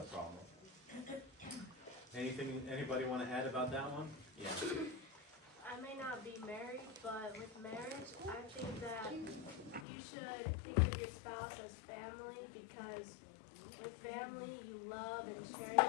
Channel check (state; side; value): drops out; right; at 9.9 s